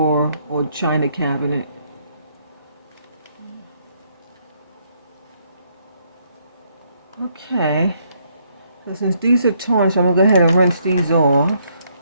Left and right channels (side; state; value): both; inverted; correlation -0.71